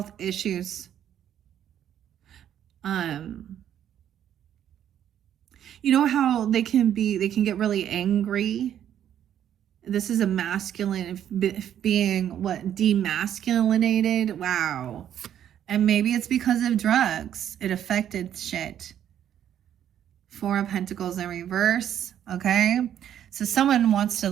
issues. You know how they can get really angry. This is a masculine being demasculinated. Wow. And maybe it's because of drugs. It affected shit. 4 of Pentacles in reverse. Okay. So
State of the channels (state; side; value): quieter; left; 10.2 dB